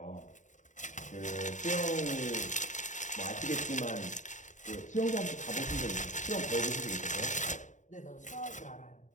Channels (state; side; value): late; right; 0.36 ms